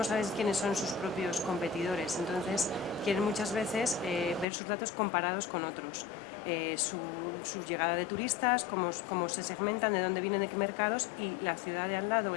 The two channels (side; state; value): right; drops out; at 4.5 s